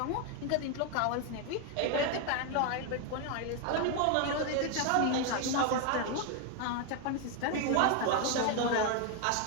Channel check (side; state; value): both; different; correlation 0.01